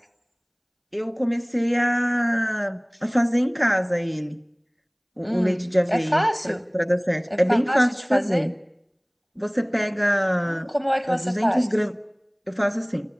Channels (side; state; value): both; identical; correlation 1.00